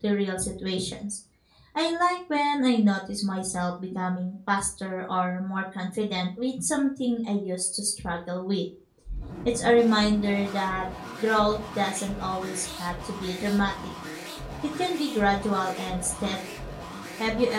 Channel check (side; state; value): both; identical; correlation 1.00